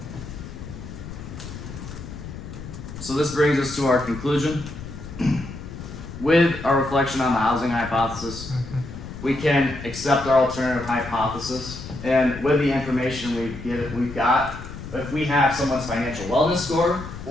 So this brings us to our conclusion. With our reflection on the housing hypothesis, we can accept our alternative hypothesis, and with the information we've got, if we have someone's financial wellness score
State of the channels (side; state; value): left; noise; rumble, 11 dB below the sound